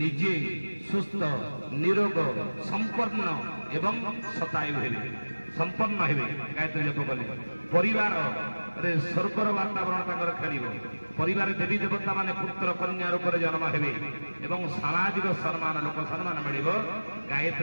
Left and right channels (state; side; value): inverted; both; correlation -1.00